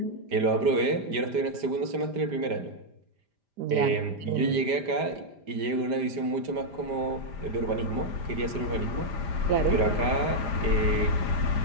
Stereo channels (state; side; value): late; left; 5.0 ms